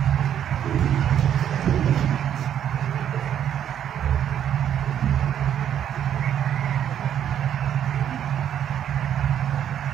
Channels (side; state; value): left; quieter; 9.8 dB